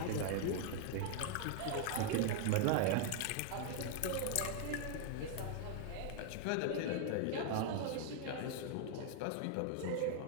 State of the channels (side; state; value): both; different; correlation 0.00